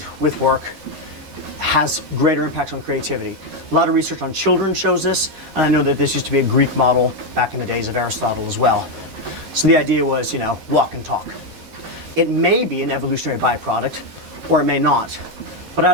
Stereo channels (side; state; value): left; late; 13 ms